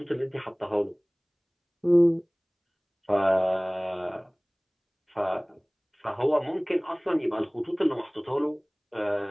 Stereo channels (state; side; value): identical; both; correlation 1.00